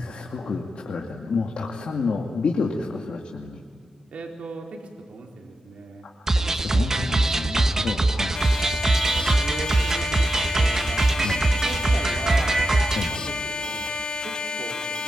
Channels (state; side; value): normal; both; correlation 0.88